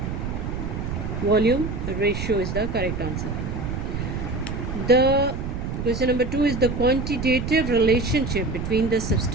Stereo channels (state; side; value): noise; right; rumble, 4 dB below the sound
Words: volume ratio is the correct answer. The question number 2 is the quantitative relationship between the